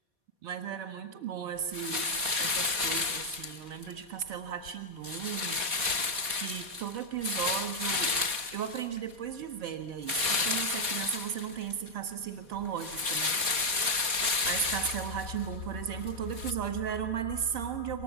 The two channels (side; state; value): left; late; 3.8 ms